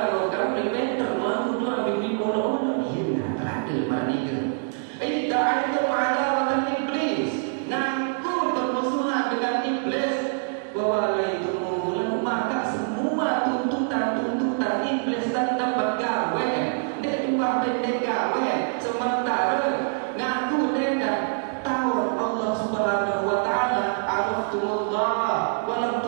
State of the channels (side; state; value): left; silent; digital silence